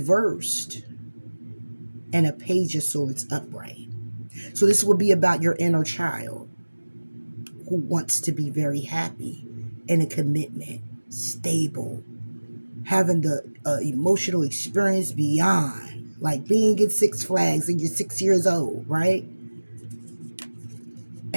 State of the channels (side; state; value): both; inverted; correlation -1.00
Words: and a Page of Swords upright. So this would be about your inner child who wants to be very happy in a commitment, stable, having the emotional experience beyond, like being in Six Flags and you're 6 years old, right?